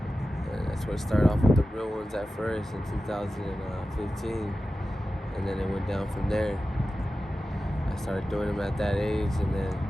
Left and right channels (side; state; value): both; normal; correlation 0.94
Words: And that's where it started off with the real ones at first in 2015. And then it went down from there. I started doing them at that age, and then